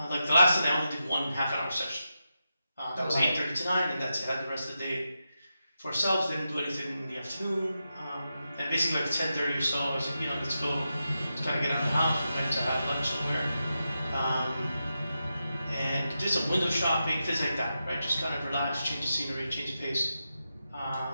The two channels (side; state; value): both; inverted; correlation -0.88